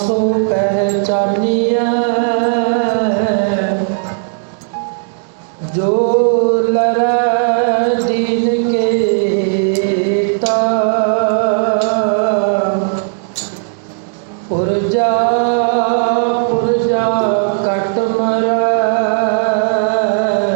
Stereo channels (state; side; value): silent; left; digital silence